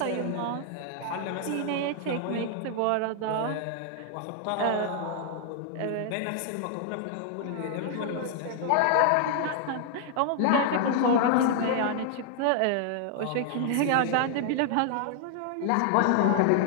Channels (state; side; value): different; both; correlation 0.00